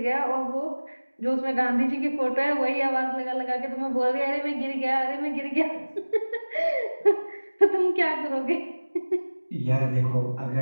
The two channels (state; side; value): inverted; both; correlation -1.00